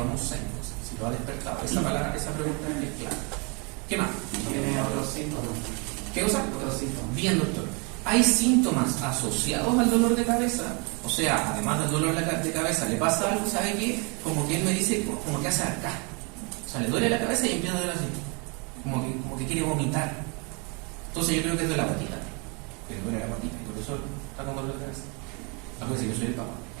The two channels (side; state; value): left; quieter; 32.6 dB